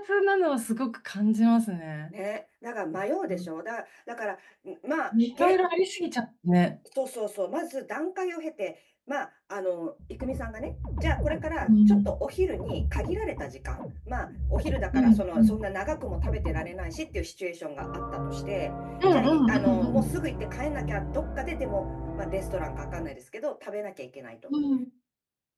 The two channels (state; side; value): identical; both; correlation 1.00